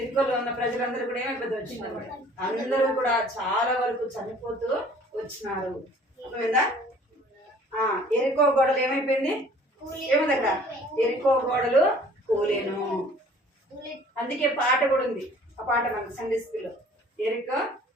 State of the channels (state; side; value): normal; both; correlation 0.53